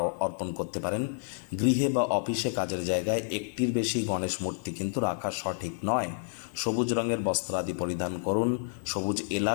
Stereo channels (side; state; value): right; silent; 58 dB below the other